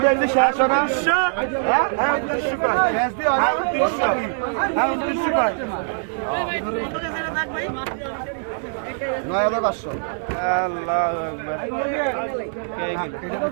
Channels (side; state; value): left; silent; 64 dB below the other